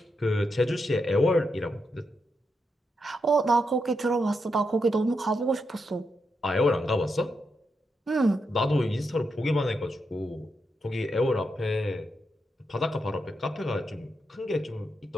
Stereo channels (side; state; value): both; normal; correlation 0.84